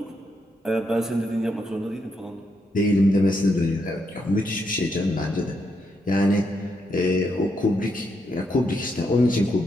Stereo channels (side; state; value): both; normal; correlation 0.80